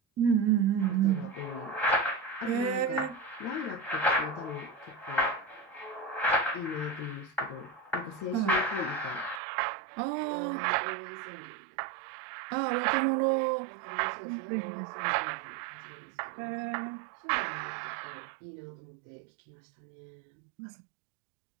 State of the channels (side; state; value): left; drops out; at 9.4 s